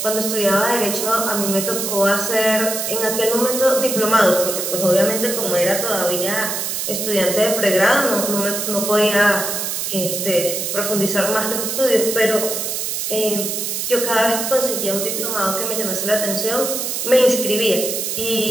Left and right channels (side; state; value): right; noise; hiss, 2 dB below the sound